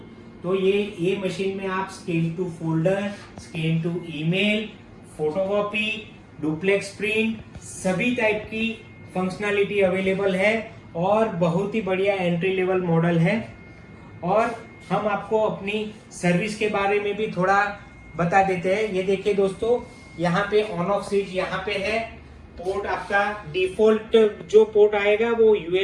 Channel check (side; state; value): both; identical; correlation 1.00